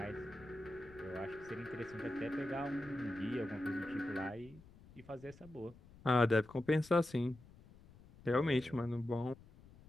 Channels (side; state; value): left; noise; rumble, 22 dB below the sound